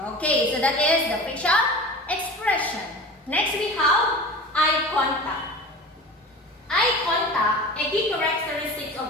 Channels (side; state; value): both; normal; correlation 0.35